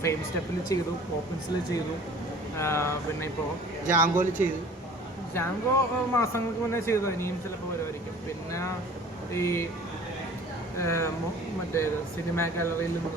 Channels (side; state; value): both; normal; correlation 0.47